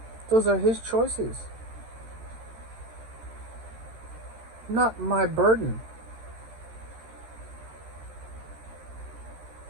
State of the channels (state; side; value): late; left; 13 ms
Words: Those are his choices. Not my burden.